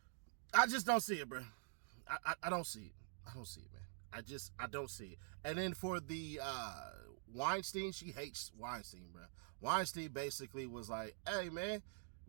I just don't see it, bro. I don't see it. I don't see it, man. I don't see it. And then for the Weinstein, she hates Weinstein, bro. Weinstein basically was like, hey, man,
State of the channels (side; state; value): left; silent; digital silence